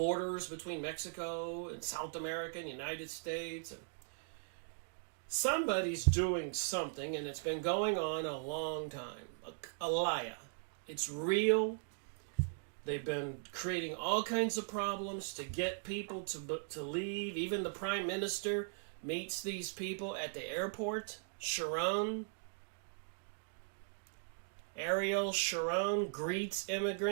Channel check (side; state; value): left; silent; digital silence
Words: between Mexico and South America and the United States. And somebody's doing something, and it's been going on a long time. Aliyah. It's real. They've been creating all kinds of problems to get people to leave. Even the Prime Minister meets these people at the airport. Ariel Sharon greets